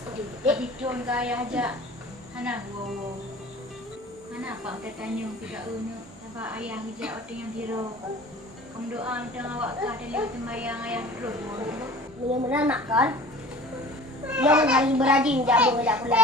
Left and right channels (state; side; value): normal; both; correlation 0.43